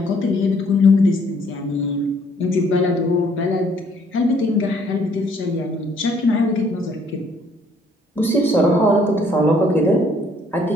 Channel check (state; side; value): normal; both; correlation 0.64